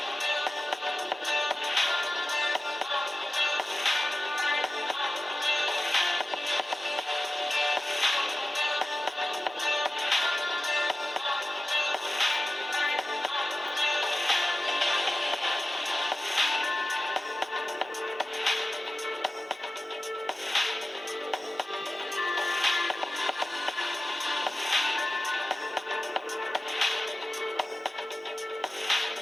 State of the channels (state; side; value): normal; both; correlation 0.95